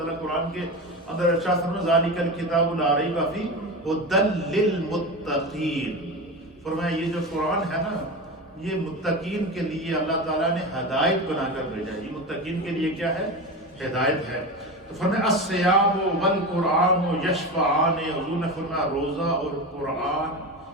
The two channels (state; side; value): normal; both; correlation 0.23